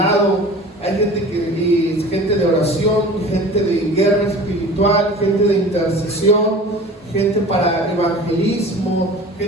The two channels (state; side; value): normal; both; correlation 0.40